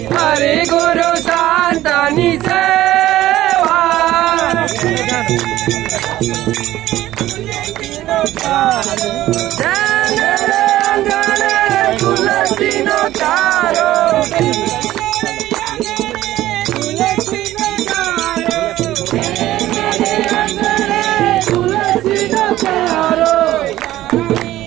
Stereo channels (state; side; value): quieter; left; 14.7 dB